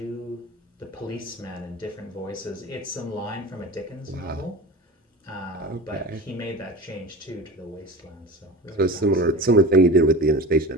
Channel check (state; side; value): normal; both; correlation 0.32